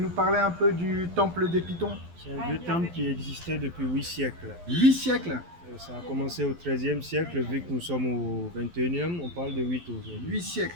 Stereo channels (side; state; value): left; late; 12 ms